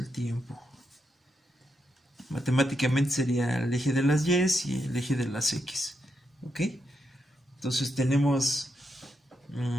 tiempo. Matemáticamente sería el eje de las Y y el eje de las X. ¿Ok? Entonces tenemos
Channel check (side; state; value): both; normal; correlation 0.82